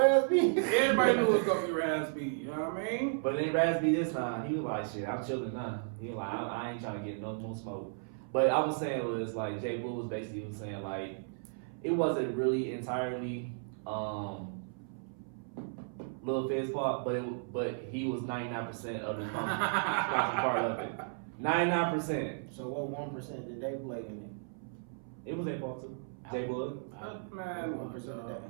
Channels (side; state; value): left; silent; 55 dB below the other